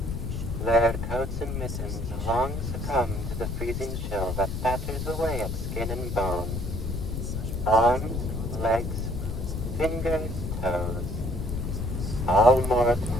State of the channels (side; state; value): left; noise; rumble, 4 dB below the sound